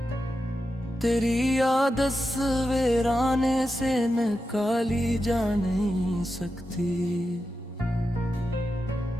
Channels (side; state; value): both; normal; correlation 0.89